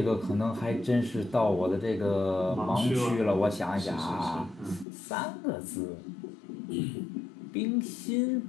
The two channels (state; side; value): drops out; right; at 4.9 s